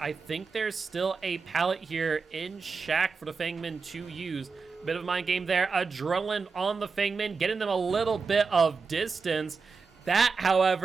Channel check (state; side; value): quieter; left; 4.8 dB